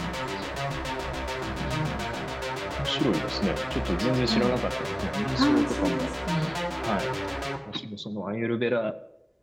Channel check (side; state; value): both; identical; correlation 1.00